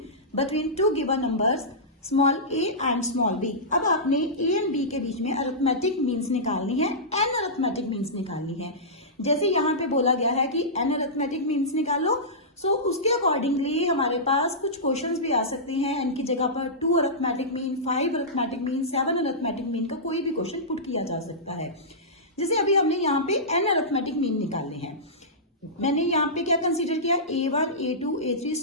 between two given numbers small A and small B. अब आपने A and B के बीच में अरिथमेटिक मीन्स निकालनी है, एन अरिथमेटिक मीन्स निकालनी है। जैसे यहाँ पे बोला गया है कि एन अरिथमेटिक मीन्स निकालो, सो उसके अकॉर्डिंगली हमारे पास कुछ क्वेश्चंस भी आ सकते हैं। एन की जगह पर 2 arithmetic mean, 5 arithmetic mean, 7 arithmetic mean का कोई भी क्वेश्चन पुट किया जा सकता है। जैसे अभी हमने यहाँ पे एन अरिथमेटिक मीन निकालने हैं, मैंने यहाँ पे क्या कंसिडर किया, A1, A2, A3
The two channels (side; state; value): both; normal; correlation -0.16